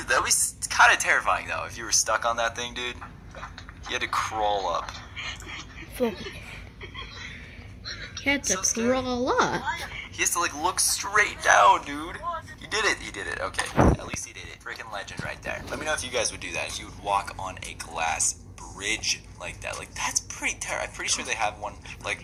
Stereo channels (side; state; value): both; identical; correlation 1.00